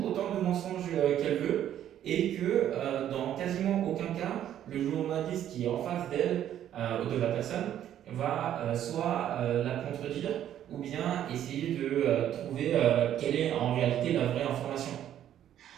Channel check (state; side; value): quieter; left; 11.0 dB